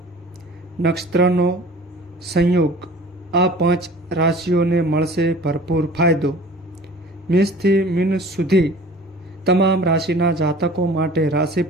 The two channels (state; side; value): normal; both; correlation 0.45